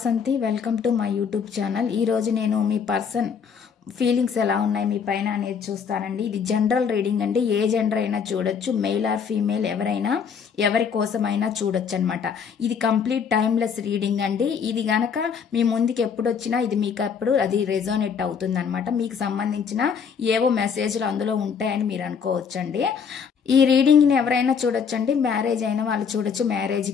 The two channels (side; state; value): right; quieter; 6.6 dB